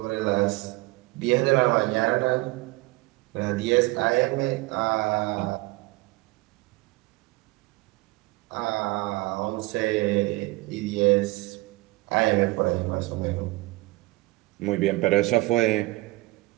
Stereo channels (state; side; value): quieter; left; 21.7 dB